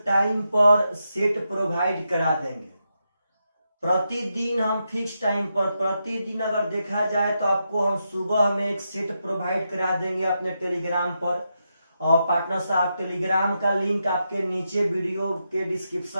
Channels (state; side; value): inverted; both; correlation -0.85